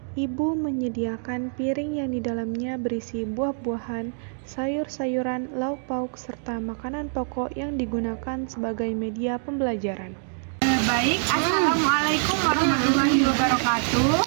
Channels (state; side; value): silent; left; 61 dB below the other